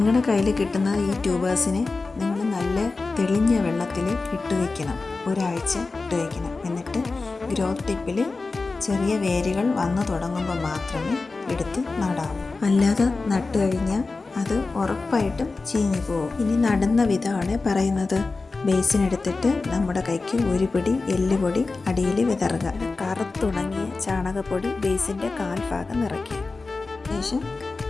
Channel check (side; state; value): right; quieter; 3.8 dB